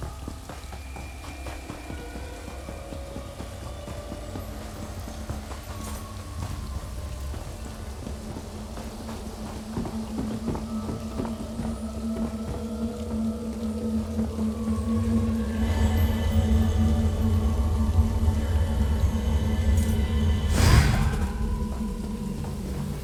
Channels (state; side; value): identical; both; correlation 1.00